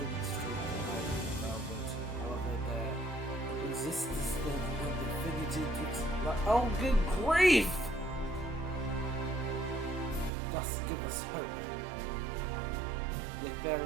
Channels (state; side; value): drops out; left; at 10.3 s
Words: the might of thou wilt, I existence then and infinity twixt. Oh, good grief! Thus give us hope. Yet there